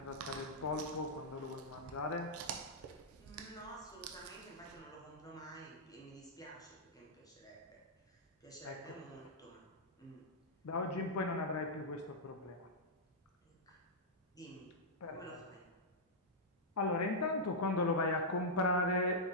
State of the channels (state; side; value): normal; both; correlation -0.09